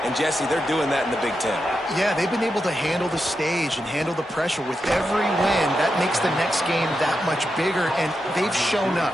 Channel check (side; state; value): both; normal; correlation 0.87